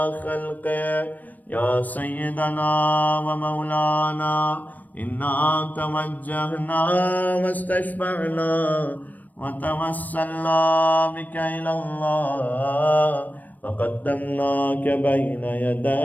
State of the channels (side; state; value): right; late; 0.082 ms